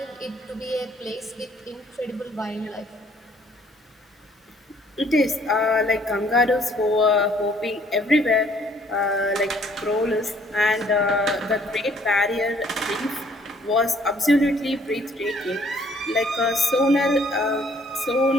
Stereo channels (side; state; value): both; normal; correlation 0.62